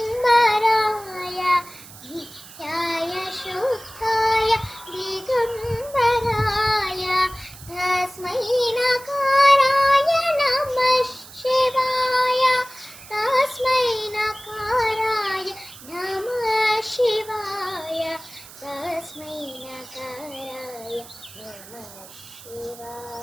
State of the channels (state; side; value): noise; right; hiss, 18 dB below the sound